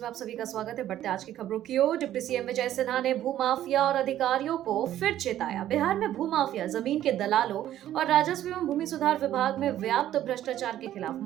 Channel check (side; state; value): left; quieter; 12.3 dB